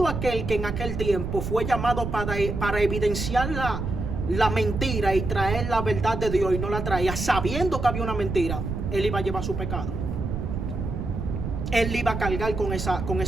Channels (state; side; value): noise; right; rumble, 4 dB below the sound